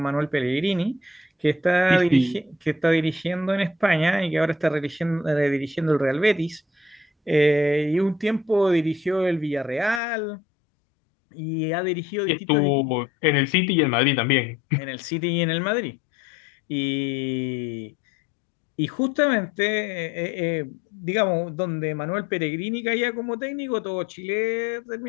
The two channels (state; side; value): drops out; right; at 10.0 s